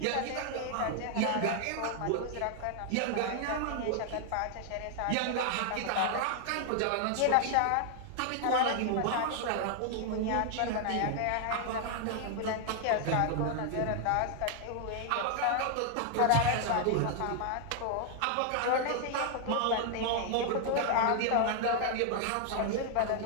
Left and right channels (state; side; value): different; both; correlation 0.00